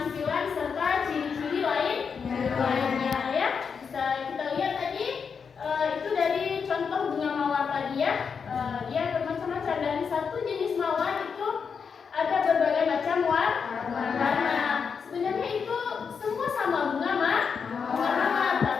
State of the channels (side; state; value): right; quieter; 6.1 dB